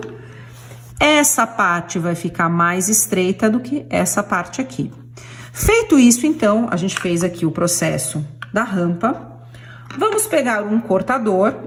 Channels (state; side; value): identical; both; correlation 1.00